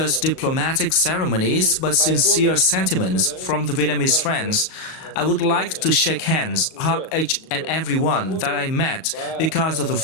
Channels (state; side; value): late; right; 37 ms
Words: diplomatic ceremonies, but sincere sentiments from the Vietnamese friends. I would like to shake hands, hug each and every one that I met because of the